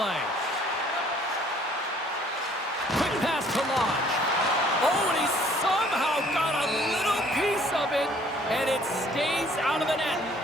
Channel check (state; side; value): normal; both; correlation 0.59